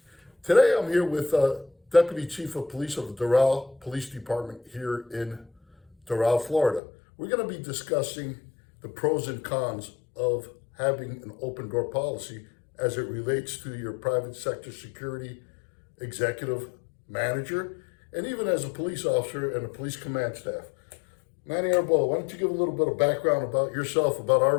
Today I'm here with Deputy Chief of Police of the Doral Police Department here in Doral, Florida. We're going to be discussing the pros and cons of having an open door policy as it relates to your private sector security executive manager and even as a police officer and a police command staff. Manny Arbola, why don't you give a little bit of background about yourself, about our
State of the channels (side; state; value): right; drops out; at 6.8 s